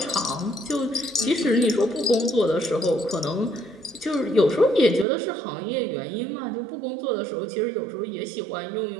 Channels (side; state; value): left; drops out; at 5.1 s